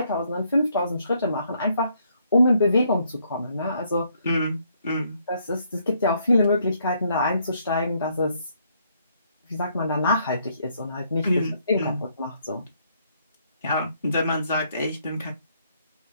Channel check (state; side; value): inverted; both; correlation -0.71